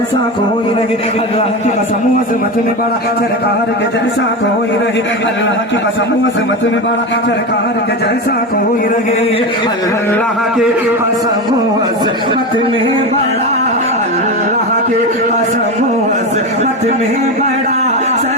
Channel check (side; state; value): both; normal; correlation 0.20